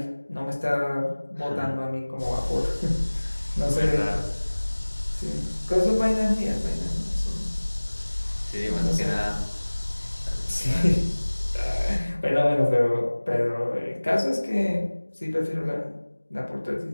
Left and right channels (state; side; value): inverted; both; correlation -1.00